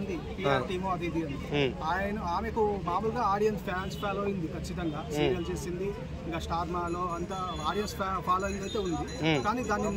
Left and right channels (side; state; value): both; identical; correlation 1.00